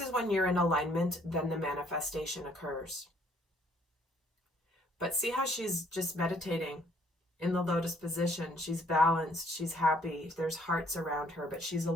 is when you're in alignment, then the manifestation occurs. But see how she's just meditating in the lotus position. She's balanced, she's happy, there's hearts around her, but she's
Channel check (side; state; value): both; normal; correlation 0.64